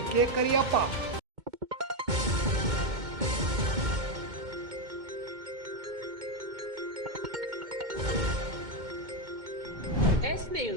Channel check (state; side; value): late; left; 2.2 ms